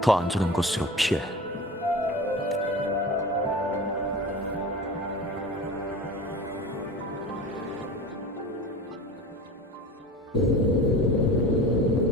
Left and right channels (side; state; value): both; normal; correlation 0.35